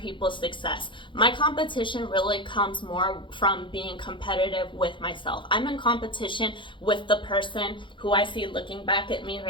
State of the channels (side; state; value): right; late; 0.24 ms